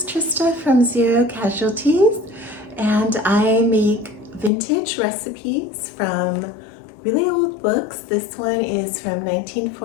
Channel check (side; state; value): right; drops out; at 4.5 s